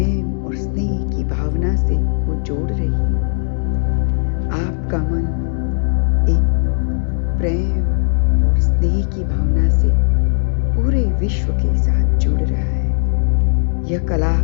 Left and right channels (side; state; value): right; silent; 55 dB below the other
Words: और स्नेह की भावना से वो जोड़ रही है। आपका मन एक प्रेम और स्नेह की भावना से पूरे विश्व के साथ जुड़ रहा है। यह कला